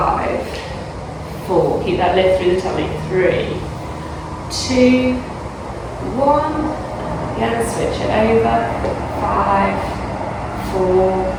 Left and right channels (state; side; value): identical; both; correlation 1.00